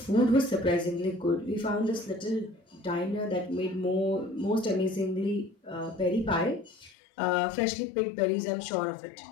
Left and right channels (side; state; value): right; drops out; at 7.0 s